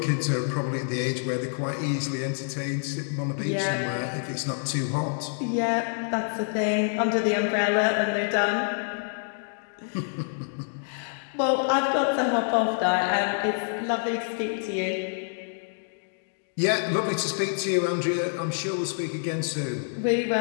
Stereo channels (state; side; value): silent; right; digital silence